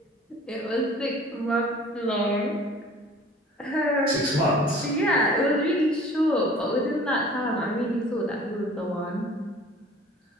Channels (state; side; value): normal; both; correlation 0.48